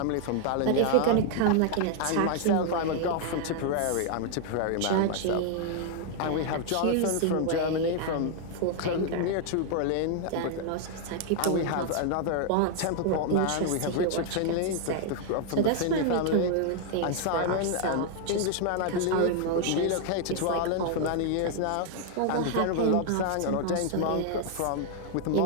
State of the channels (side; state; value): both; different; correlation 0.00